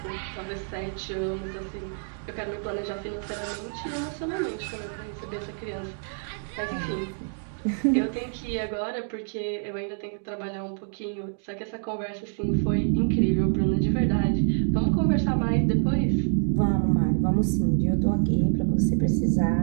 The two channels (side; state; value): left; silent; 60 dB below the other